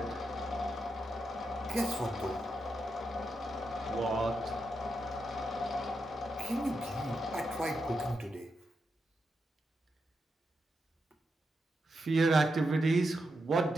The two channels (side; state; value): both; normal; correlation 0.85